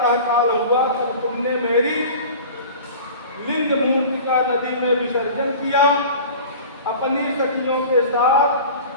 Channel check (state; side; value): inverted; both; correlation -0.39